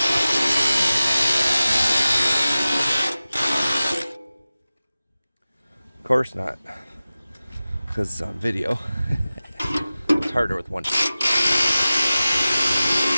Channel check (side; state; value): both; inverted; correlation -0.96